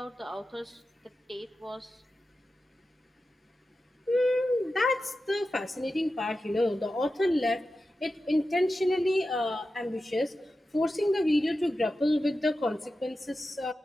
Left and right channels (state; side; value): normal; both; correlation 0.92